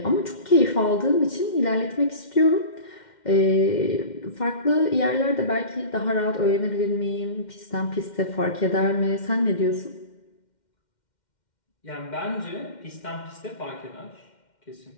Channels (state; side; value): late; right; 2.1 ms